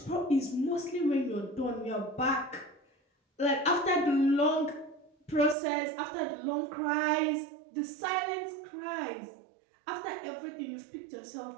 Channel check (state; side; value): drops out; left; at 5.6 s